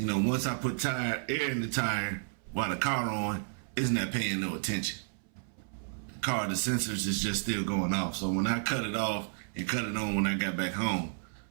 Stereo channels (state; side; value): silent; left; 57 dB below the other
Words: I put air in the tire while the car on, it's not paying no attention. The sensors is just still going off. So when I cut it off and cut it on when I got back home,